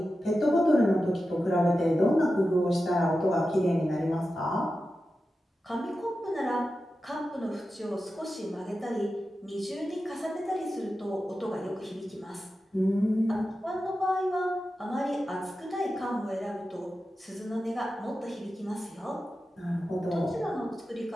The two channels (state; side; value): normal; both; correlation 0.92